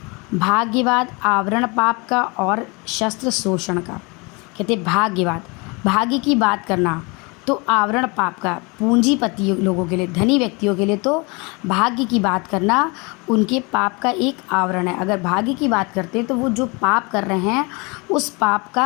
भाग्यवाद आवरण पाप का और शस्त्र शोषण का। कहते भाग्यवाद, भाग्य की बात करना तो आवरण पाप का, पूंजीपति लोगों के लिए, धनी व्यक्तियों के लिए तो भाग्य की बात करना उनके पाप का एक आवरण है। अगर भाग्य की बात करते हैं तो वो जो पाप कर रहे हैं उस पाप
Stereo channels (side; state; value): right; quieter; 28.7 dB